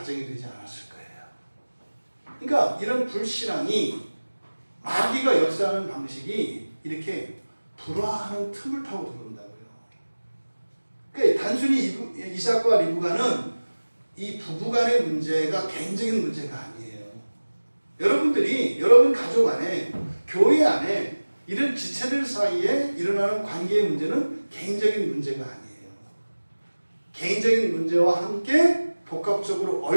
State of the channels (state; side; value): inverted; both; correlation -1.00